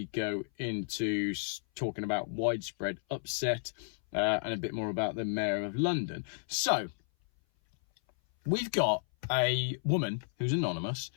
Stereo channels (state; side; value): silent; right; 56 dB below the other